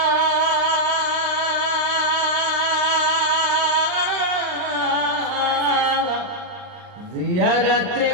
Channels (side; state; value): left; late; 39 ms